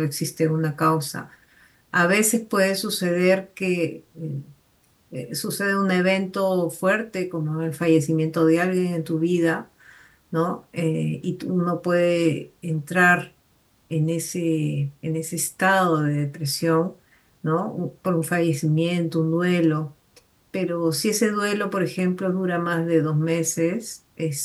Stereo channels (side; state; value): both; identical; correlation 1.00